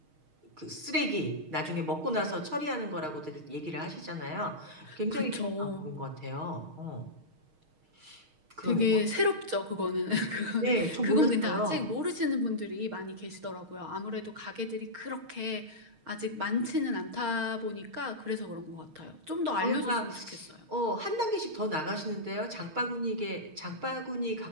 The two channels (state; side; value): late; left; 6.4 ms